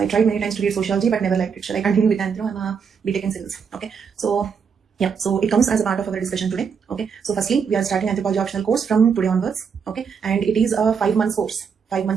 tried many times to read sociology but never liked it. Shall I continue with anthro? I'm a BTech in civils. Okay. So yeah, so it comes as a part of our discussion today. Okay. So firstly, we are starting anthropology optional course from today onwards. Okay. And it is a 5 months course. 5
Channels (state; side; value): quieter; left; 6.4 dB